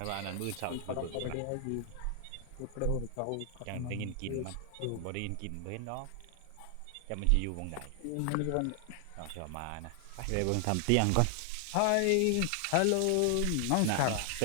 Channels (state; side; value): different; both; correlation 0.00